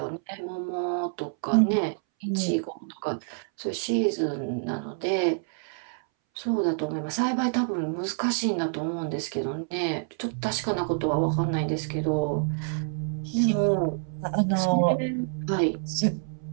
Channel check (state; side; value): silent; left; 60 dB below the other